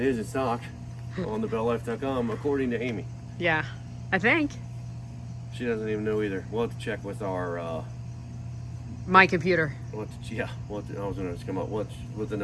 is in stock on the BellLife.com, according to Amy. Yeah, I think. She doesn't even know either. We'll have to check with our my computer. I was going to come up with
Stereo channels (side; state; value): both; identical; correlation 1.00